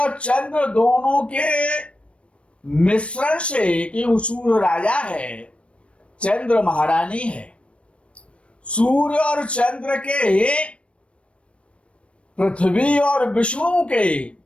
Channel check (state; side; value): late; right; 0.060 ms